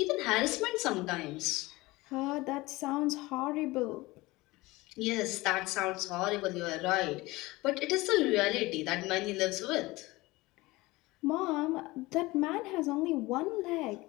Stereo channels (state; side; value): quieter; right; 20.9 dB